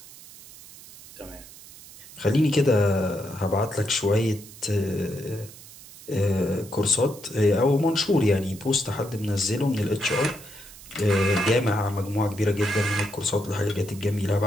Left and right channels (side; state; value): right; noise; hiss, 18 dB below the sound